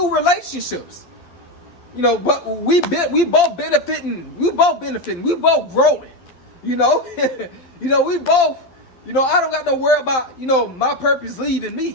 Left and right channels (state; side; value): late; right; 11 ms